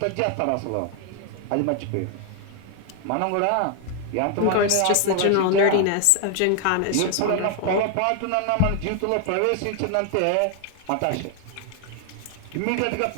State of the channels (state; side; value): different; both; correlation 0.00